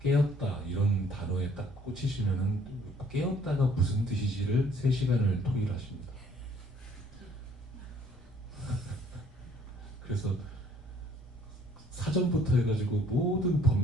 깨었다 이런 단어에 딱 꽂히시면은 깨었다가 무슨 뜻이지를 3시간을 토의하십니다. 그래서 사전부터 해가지고 모든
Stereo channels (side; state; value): both; normal; correlation 0.60